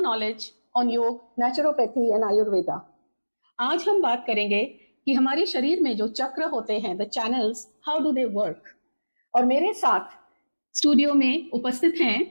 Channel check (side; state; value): both; inverted; correlation -1.00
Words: knowledge on योग, naturopathy and Ayurveda. आज हम बात करेंगे कि हमारे शरीर में जो चक्र होते हैं, the channels, how do they work? और मेरे साथ स्टूडियो में उपस्थित हैं